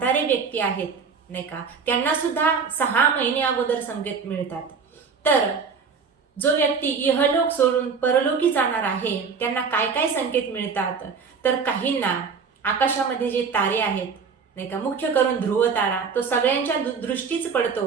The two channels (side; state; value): left; quieter; 5.6 dB